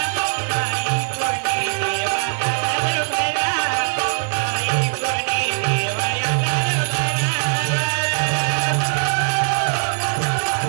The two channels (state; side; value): silent; left; 65 dB below the other